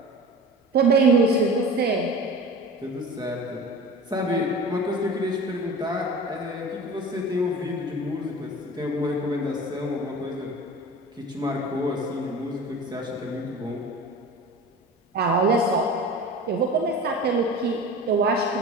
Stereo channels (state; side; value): normal; both; correlation 0.36